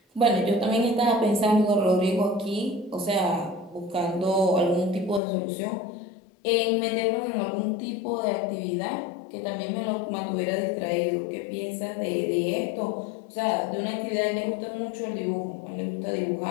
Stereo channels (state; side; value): drops out; right; at 5.2 s